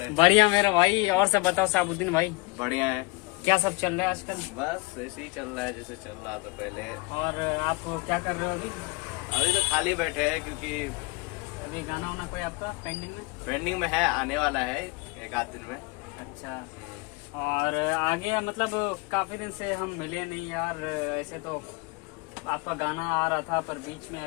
बढ़िया मेरा भाई। और सब बताओ साबुद्दीन भाई। बढ़िया है। क्या सब चल रहा है आजकल? बस ऐसे ही चल रहा है जैसे चल रहा था पहले। और आप क्या कर रहे हो अभी? अभी तो खाली बैठे हैं क्योंकि अभी गाना वाना कोई आपका पेंडिंग में? पेंडिंग में है, आने वाला है एक आध दिन में। अच्छा। और आगे मतलब काफी दिन से हम मिले नहीं यार। ऐसे तो आपका गाना आ रहा था पर बीच में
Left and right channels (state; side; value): quieter; right; 25.9 dB